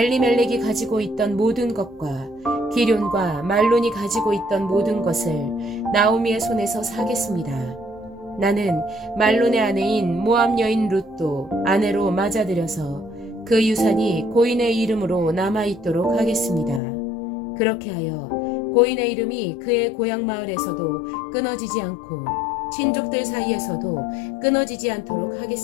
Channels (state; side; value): drops out; right; at 16.8 s